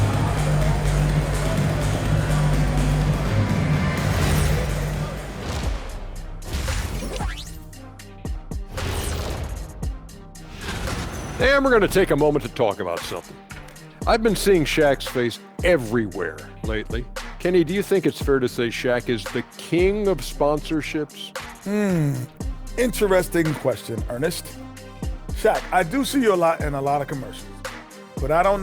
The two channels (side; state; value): both; identical; correlation 1.00